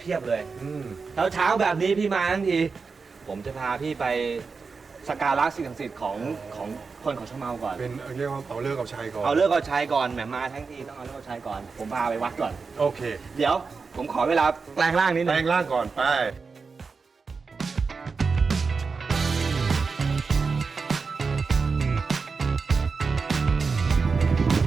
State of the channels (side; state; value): left; quieter; 4.8 dB